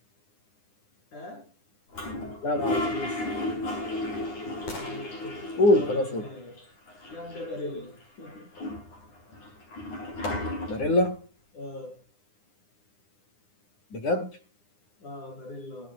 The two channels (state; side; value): late; right; 9.8 ms